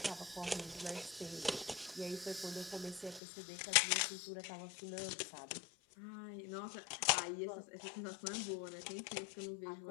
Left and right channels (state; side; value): drops out; right; at 3.2 s